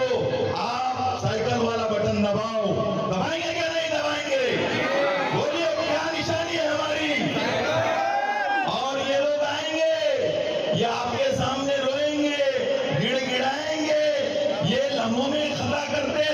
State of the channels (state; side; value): identical; both; correlation 1.00